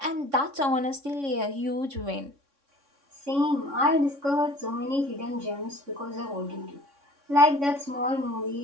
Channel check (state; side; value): late; left; 3.6 ms